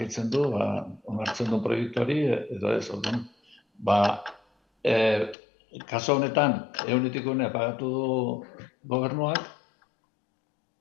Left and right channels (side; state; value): right; drops out; at 5.4 s